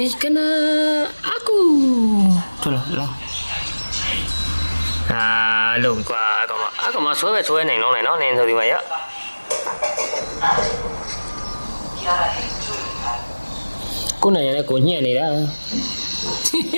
ေးကနာအကူထွက်လာဟာလုံးကွာအကောင်မဆွဲနိုင်လုံးနဲ့နော်နင်းဆိုဒီမှာရကိုနိုင်ရတဲ့ကိုညှက်နေတာ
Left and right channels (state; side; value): inverted; both; correlation -1.00